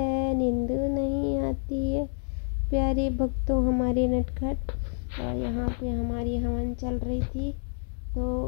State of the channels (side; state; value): right; silent; digital silence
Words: नींदो नहीं आती है। प्यारे भक्तों हमारे नटखट। और यहाँ पे हमारी हवन चल रही थी,